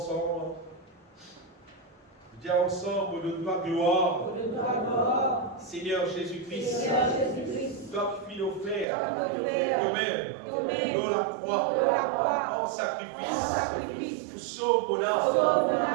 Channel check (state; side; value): drops out; left; at 8.8 s